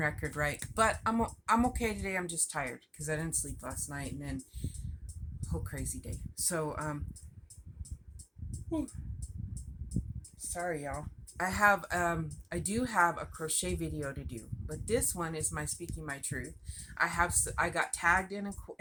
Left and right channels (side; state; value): both; identical; correlation 1.00